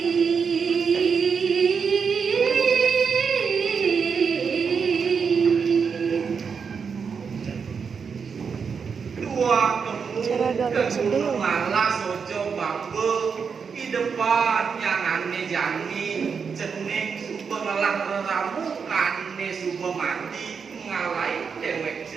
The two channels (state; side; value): quieter; left; 6.0 dB